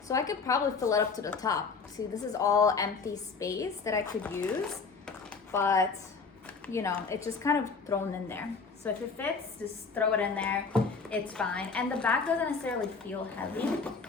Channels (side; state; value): right; quieter; 4.9 dB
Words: So I could probably fill it up to the top. See, this is all empty space that I could use, but you know, it's just kind of thrown in there. So if it fits, just throw it in there, it's fine. And the bag doesn't necessarily feel heavy.